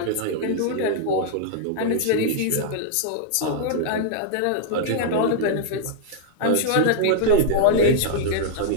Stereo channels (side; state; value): both; different; correlation -0.01